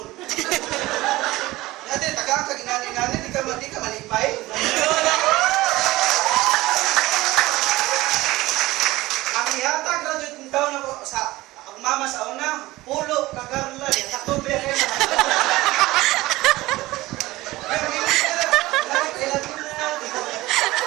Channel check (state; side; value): quieter; left; 18.7 dB